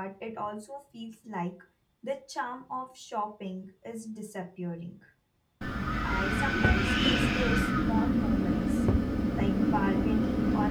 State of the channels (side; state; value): both; identical; correlation 1.00